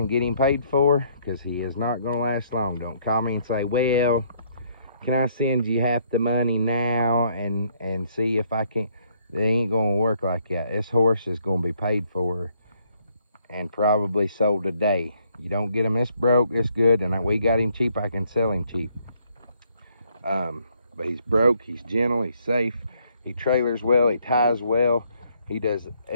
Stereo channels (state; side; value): inverted; both; correlation -0.68